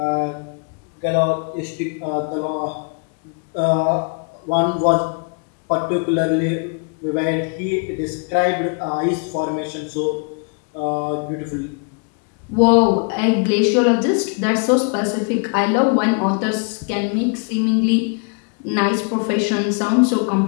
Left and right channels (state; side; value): quieter; right; 39.0 dB